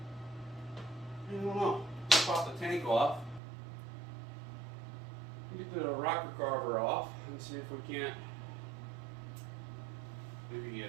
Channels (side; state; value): left; drops out; at 3.4 s